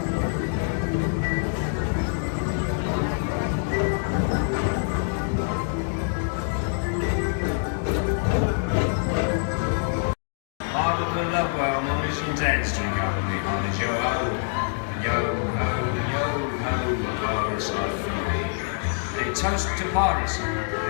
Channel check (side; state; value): right; silent; digital silence